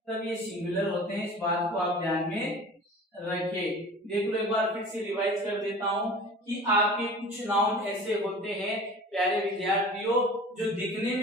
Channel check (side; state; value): both; normal; correlation 0.41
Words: तब ये सिंगुलर होते हैं। इस बात को आप ध्यान में रखें। देख लो, एक बार फिर से रिवाइज कर देता हूं कि आपके कुछ नाउन ऐसे होते हैं प्यारे विद्यार्थियों, जो दिखने